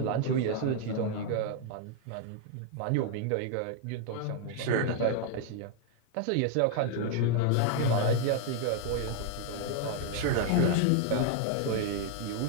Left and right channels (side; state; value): both; different; correlation 0.00